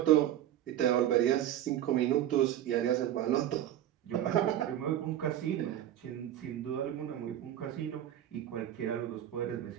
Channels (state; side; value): quieter; left; 11.8 dB